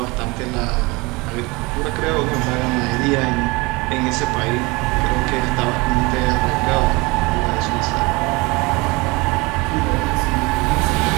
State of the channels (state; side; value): quieter; left; 24.9 dB